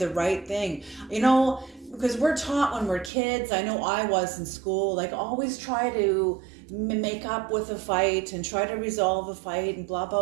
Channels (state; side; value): drops out; left; at 3.1 s